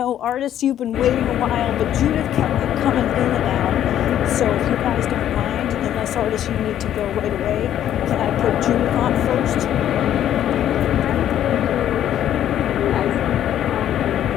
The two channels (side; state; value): right; quieter; 11.1 dB